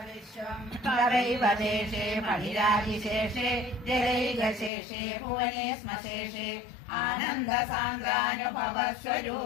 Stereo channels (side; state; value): right; drops out; at 4.7 s